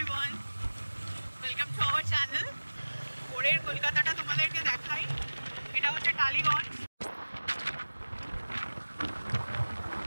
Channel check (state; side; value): inverted; both; correlation -1.00